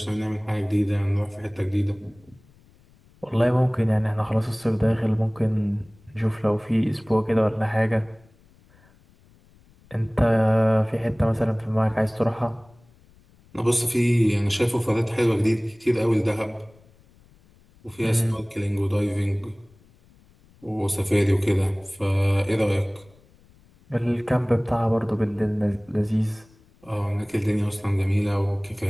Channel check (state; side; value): noise; left; rumble, 29 dB below the sound